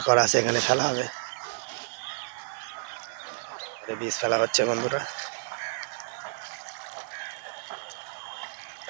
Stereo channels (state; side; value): silent; left; digital silence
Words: করা আছে এখানে ফেলা হবে। বীজ ফেলা হচ্ছে বন্ধুরা,